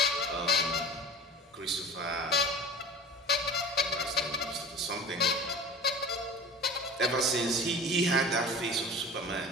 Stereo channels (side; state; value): both; normal; correlation 0.37